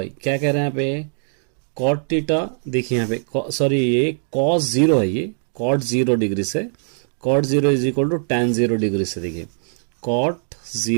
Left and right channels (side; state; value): left; silent; 65 dB below the other